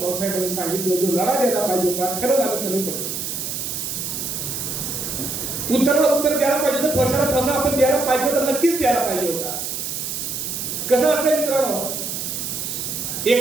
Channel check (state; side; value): noise; right; hiss, 4 dB below the sound